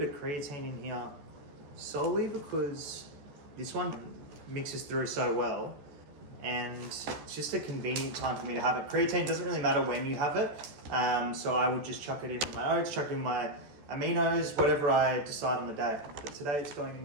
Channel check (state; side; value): late; left; 14 ms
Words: of creatine in here, solely because this one mixes through so well, and it's just a convenient time for me to have it. Creatine doesn't really matter when you have it, so I would just chuck it in with my oats, chuck it in my aminos, whatever I decide on the day. But today it's going in